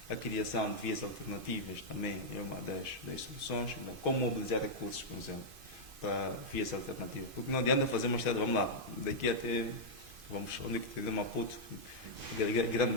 A criação de vias alternativas também é uma das soluções. Então, como mobilizar recursos, por exemplo, para vias alternativas? Porque não adianta fazer uma estrada, vamos lá, daqui até, onde é que tem Maputo, Grande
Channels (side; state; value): left; late; 2.5 ms